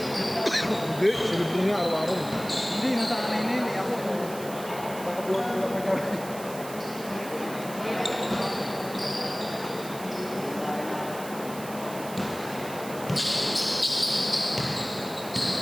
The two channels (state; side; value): noise; right; hiss, 14 dB below the sound